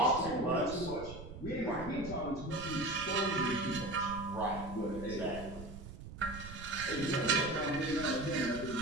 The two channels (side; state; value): right; noise; rumble, 12 dB below the sound